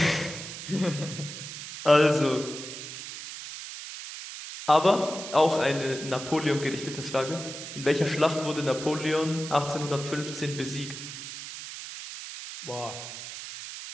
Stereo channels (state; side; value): noise; right; hiss, 10 dB below the sound